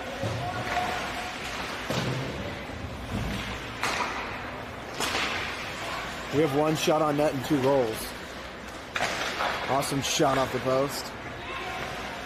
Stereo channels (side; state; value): both; identical; correlation 1.00